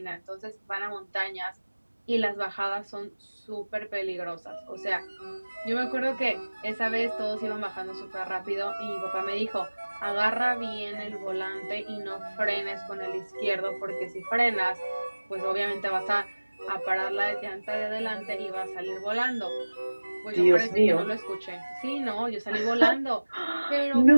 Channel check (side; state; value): both; inverted; correlation -1.00